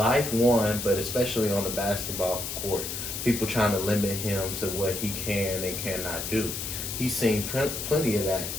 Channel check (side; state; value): left; noise; hiss, 5 dB below the sound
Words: but especially on the basketball court. People trying to limit him to what he can and cannot do. He's seen plenty of that,